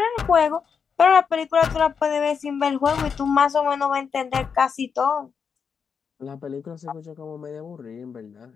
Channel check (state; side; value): quieter; right; 6.3 dB